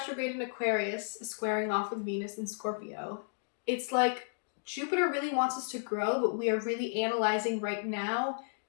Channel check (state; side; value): silent; right; digital silence